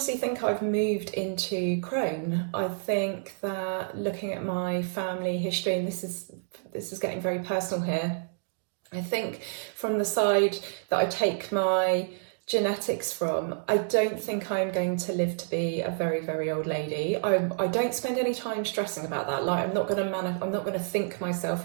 think I've moved into crone. I think that looking at my family history, and this is getting very personal here, I think from the side that I take my genetics from, I don't think I'm going to live to be a very, very old lady. I don't spend any time stressing about that. Like, I'm not going to think myself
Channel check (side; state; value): left; silent; digital silence